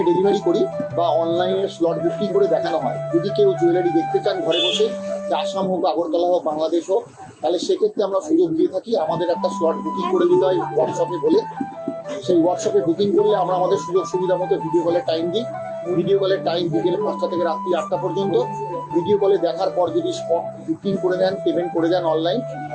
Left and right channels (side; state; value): both; identical; correlation 1.00